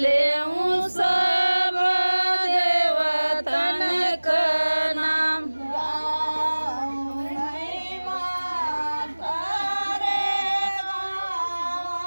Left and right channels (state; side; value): inverted; both; correlation -1.00